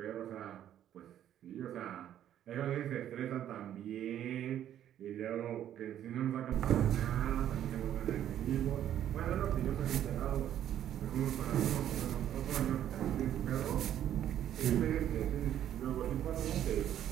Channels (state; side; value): quieter; left; 10.9 dB